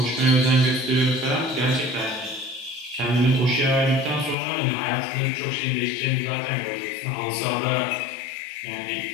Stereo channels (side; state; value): right; drops out; at 4.4 s